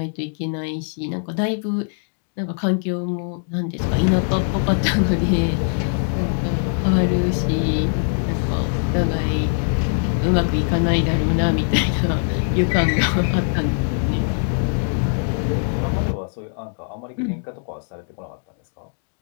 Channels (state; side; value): silent; right; digital silence